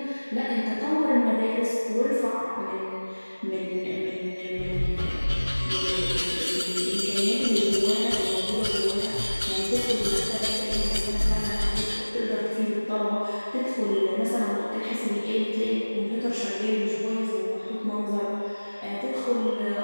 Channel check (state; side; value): inverted; both; correlation -1.00